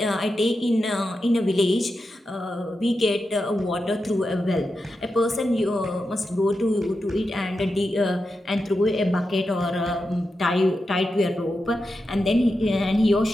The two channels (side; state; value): both; normal; correlation 0.89